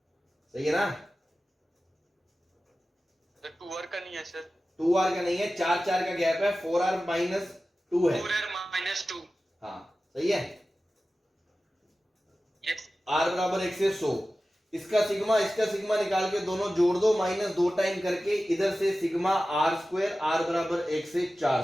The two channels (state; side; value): normal; both; correlation 0.95